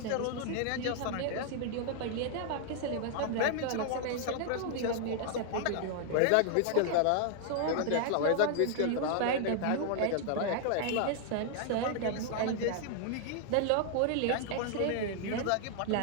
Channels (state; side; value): different; both; correlation 0.00